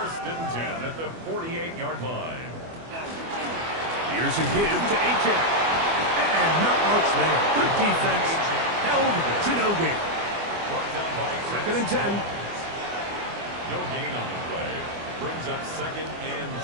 and 10 at the 48-yard line. Here's a give to Achane. And not much there. Good defense. Held to no gain. Brought down by 2nd and 10. No gain on the play. Brings up 2nd and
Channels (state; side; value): late; left; 24 ms